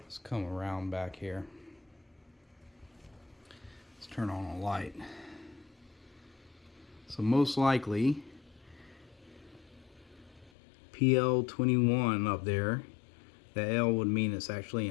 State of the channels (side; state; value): right; drops out; at 10.5 s